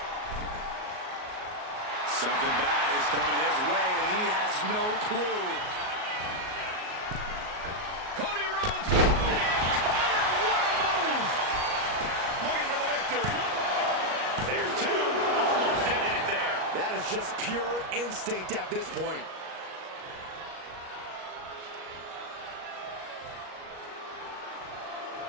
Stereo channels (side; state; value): left; late; 38 ms